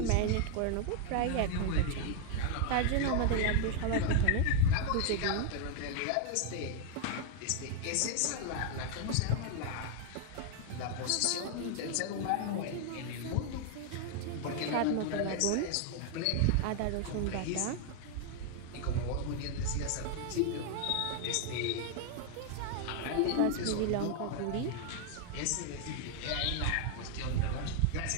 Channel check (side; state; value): both; different; correlation 0.00